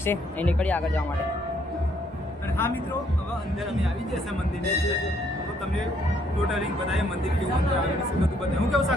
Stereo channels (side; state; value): both; normal; correlation 0.68